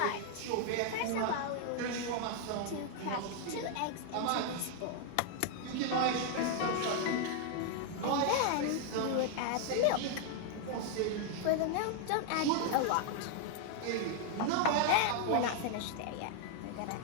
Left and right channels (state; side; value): different; both; correlation 0.00